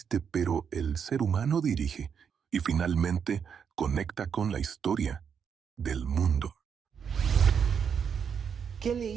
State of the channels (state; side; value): quieter; left; 7.2 dB